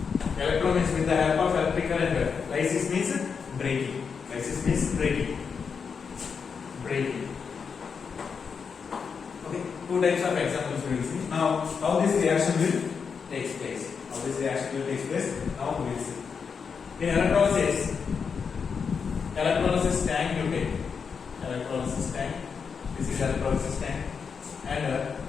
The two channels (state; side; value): quieter; right; 6.0 dB